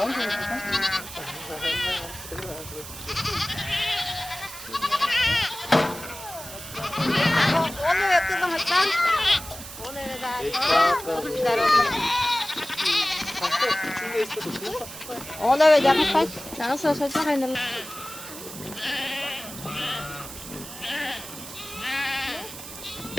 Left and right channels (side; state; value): right; noise; hiss, 12 dB below the sound